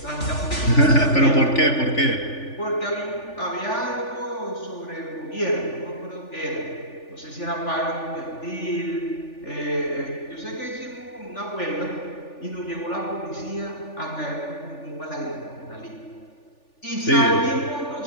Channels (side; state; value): right; late; 3.4 ms